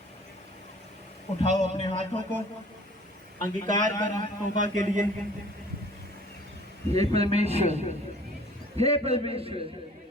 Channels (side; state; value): both; normal; correlation 0.51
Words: उठाओ अपने हाथों को, अंगीकार करो तौबा के लिए। हे परमेश्वर, हे परमेश्वर,